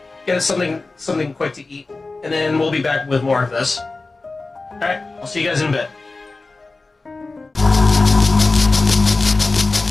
get us something quick to eat, and then we'll be back with more of this. Alright, I'll see you guys in a bit.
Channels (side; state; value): right; quieter; 3.5 dB